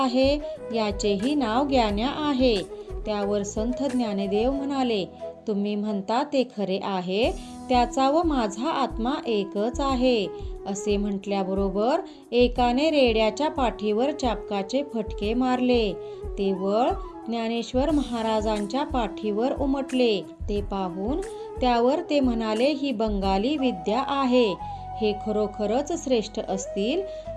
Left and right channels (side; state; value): both; identical; correlation 1.00